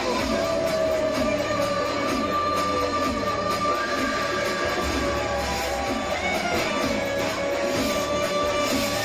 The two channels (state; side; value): identical; both; correlation 1.00